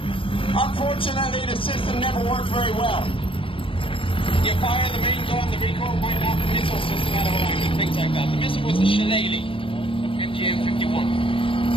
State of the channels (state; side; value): late; right; 0.25 ms